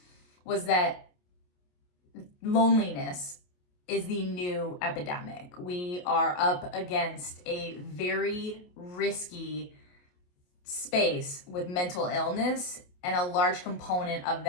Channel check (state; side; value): late; right; 28 ms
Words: was that loneliness is the new epidemic. We are up against a very risky space with mental illness, and a large component of